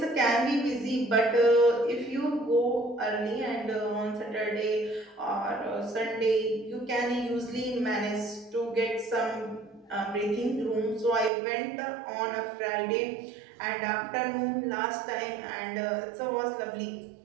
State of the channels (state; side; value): drops out; left; at 11.3 s